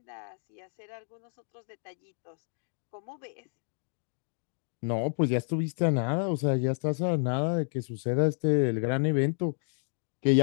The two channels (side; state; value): right; silent; digital silence